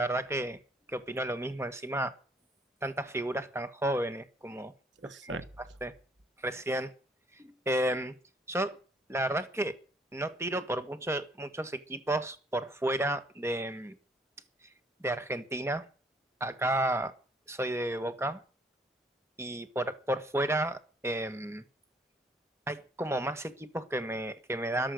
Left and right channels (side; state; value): both; normal; correlation 0.63